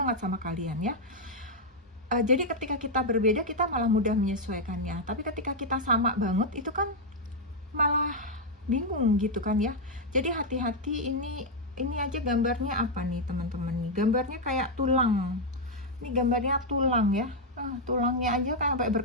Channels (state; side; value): normal; both; correlation -0.01